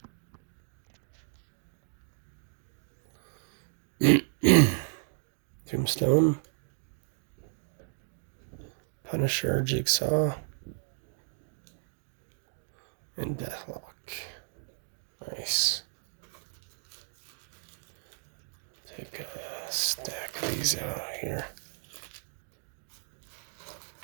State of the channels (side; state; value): left; silent; digital silence